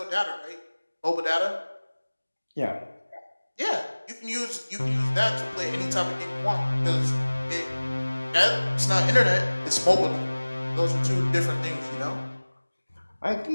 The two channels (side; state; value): both; inverted; correlation -1.00